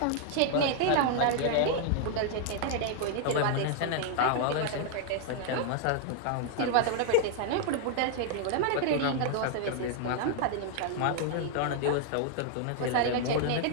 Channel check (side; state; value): both; different; correlation 0.00